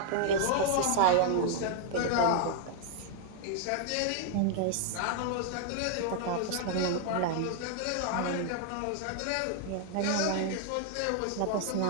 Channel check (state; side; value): different; both; correlation 0.00